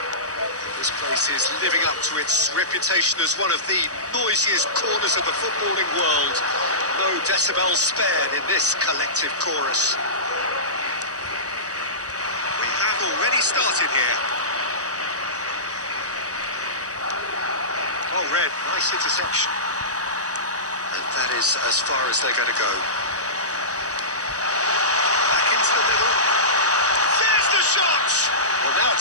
This place is living up to its reputation as one of the noisiest corners of the footballing world. No decibels spared in this collective chorus. We have already started here. Oh, Red, nice interception. And that is as far as they're going to go. Back into the middle. There's the shot! Well, now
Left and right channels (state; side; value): late; left; 0.66 ms